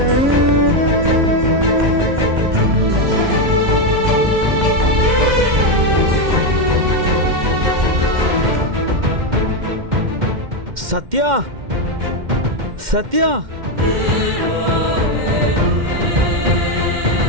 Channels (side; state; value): left; late; 2.1 ms